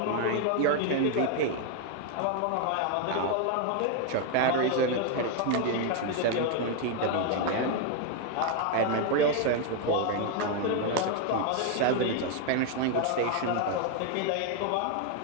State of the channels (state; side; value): different; both; correlation 0.01